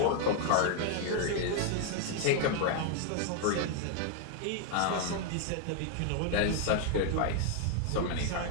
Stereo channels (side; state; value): both; different; correlation 0.00